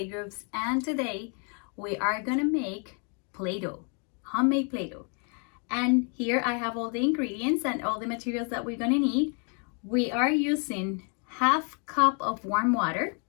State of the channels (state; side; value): quieter; right; 38.6 dB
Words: and today we are gonna make Play-Doh, homemade Play-Doh. And here I have all the ingredients and all the materials that we're gonna need. We are using half cup of warm water,